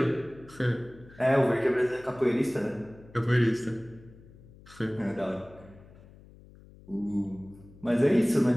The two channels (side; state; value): left; noise; hum, 22 dB below the sound